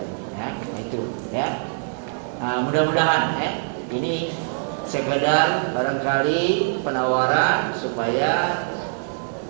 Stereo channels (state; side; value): silent; left; digital silence